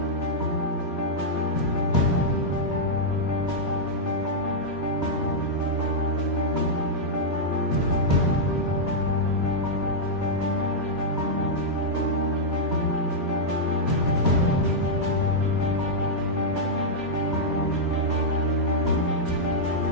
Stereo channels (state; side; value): normal; both; correlation -0.06